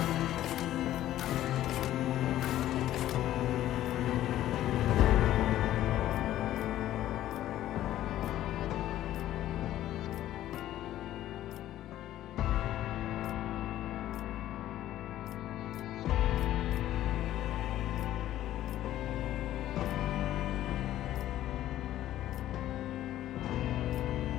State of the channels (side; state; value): right; quieter; 13.3 dB